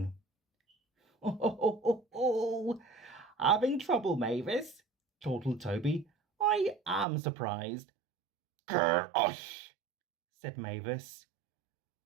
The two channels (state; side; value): drops out; left; at 7.1 s